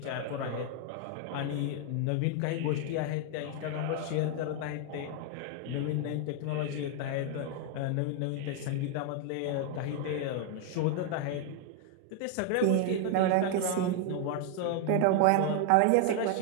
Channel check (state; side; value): different; both; correlation 0.00